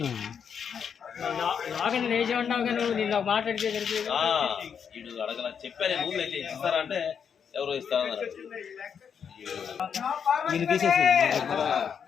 నాగని వేసి ఉన్నావు కానీ నిన్న మాట్లాడితే వీడు అడగల చెప్పాను. రూల్ అయితే ఇస్తారా అంటే ఎవరో ఇస్తారన్నారు. ఈరోజు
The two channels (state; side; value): quieter; right; 7.2 dB